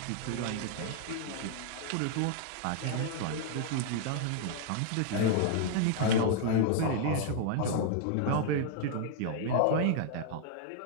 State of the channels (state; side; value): different; both; correlation 0.00